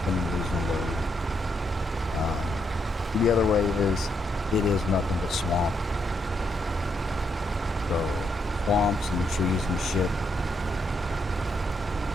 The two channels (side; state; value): both; normal; correlation 0.78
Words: and losing load. The other way is, it is nothing but swamp. So, swamps and trees and shit.